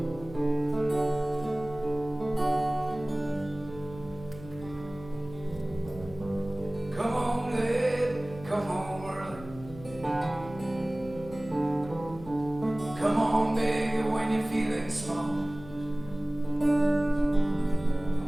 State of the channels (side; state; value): left; noise; hum, 16 dB below the sound